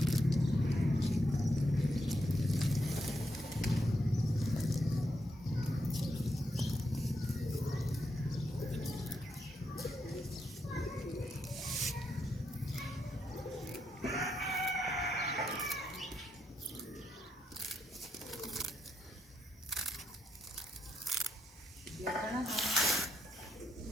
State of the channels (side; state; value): both; normal; correlation 0.81